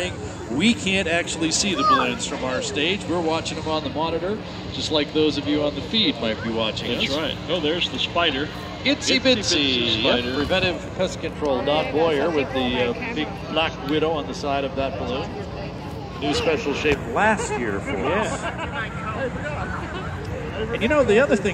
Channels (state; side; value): identical; both; correlation 1.00